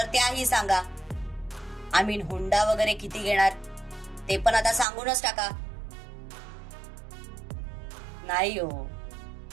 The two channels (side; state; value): left; drops out; at 4.9 s